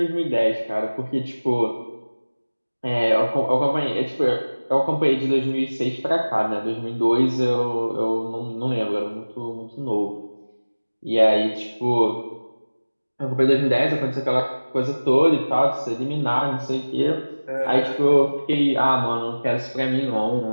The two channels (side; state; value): both; inverted; correlation -1.00